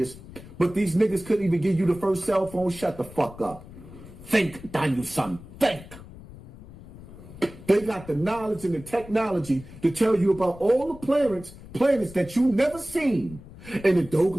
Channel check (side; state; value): left; noise; rumble, 17 dB below the sound